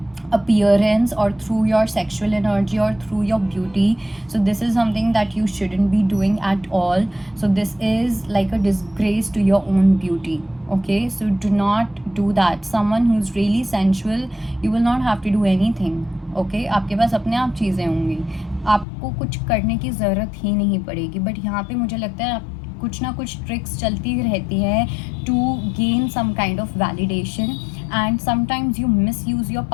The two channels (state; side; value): drops out; right; at 18.9 s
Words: appearance, or through your sexual energy, or through your beauty. So this is something that you shouldn't be doing at all. So this is like a disgrace to your own beauty. Okay, so do not do that. Someone who's really sensual, you will not have to do anything. Okay, आपके पास अपने आप चीज़ें होंगी, आपको कुछ करने की ज़रूरत ही नहीं पड़ेगी। बट यहाँ पे मुझे लगता है कुछ ना कुछ ट्रिक्स चलती रहती है to gain some kind of validation, and sometimes you misuse your